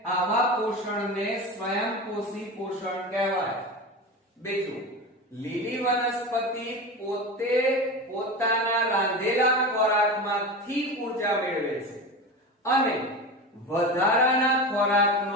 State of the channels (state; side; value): normal; both; correlation 0.26